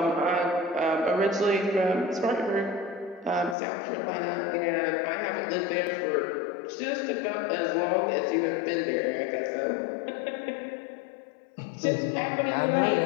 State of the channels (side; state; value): right; drops out; at 3.6 s